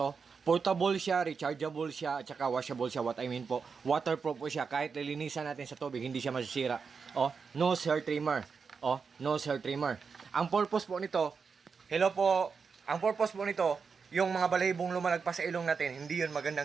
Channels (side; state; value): left; quieter; 5.5 dB